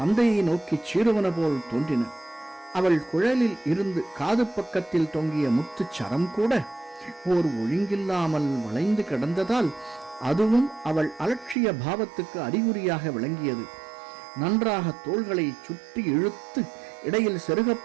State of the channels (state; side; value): drops out; left; at 11.6 s